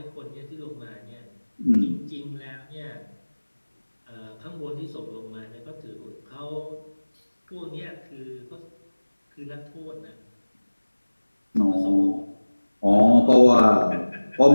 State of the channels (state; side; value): inverted; both; correlation -1.00